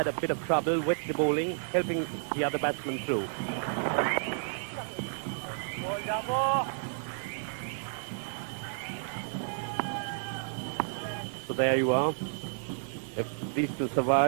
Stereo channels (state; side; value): silent; left; digital silence